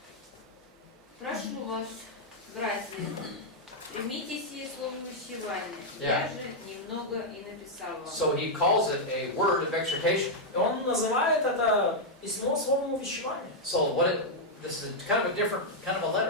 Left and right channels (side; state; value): both; normal; correlation -0.03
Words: Прошу вас, братья, примите сие слово увещевания. Yeah. Я же немного и написал вам. So he calls it a word of exhortation. И он называет это письмо словом увещевания. So this is kind of a different kind of a